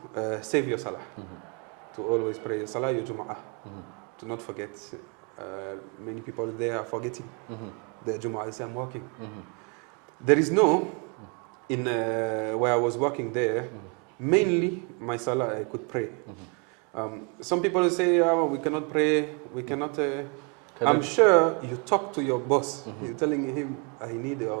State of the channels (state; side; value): quieter; left; 35.3 dB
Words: save your salah, to always pray your salah, your Jum'ah, to not forget. Many people there are forgetting the Jum'ah. They say, I'm working. There is where I was working there, mainly my salah I could pray. Some people say, we cannot pray, we cannot. I'm sure you talk to your boss. You're telling him, I need